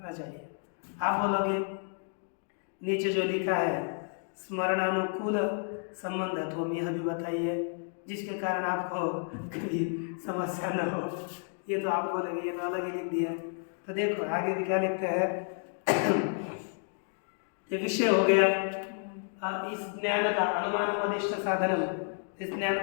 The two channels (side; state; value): right; silent; 57 dB below the other